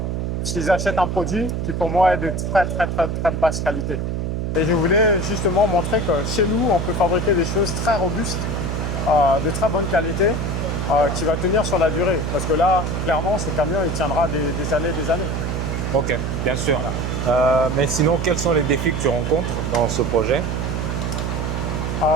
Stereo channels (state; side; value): noise; right; hum, 1 dB below the sound